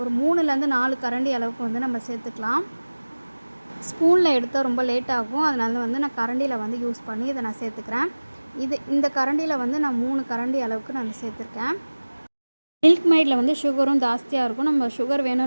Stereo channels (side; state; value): both; inverted; correlation -1.00